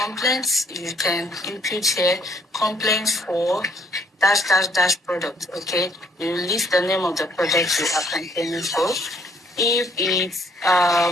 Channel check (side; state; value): both; normal; correlation 0.64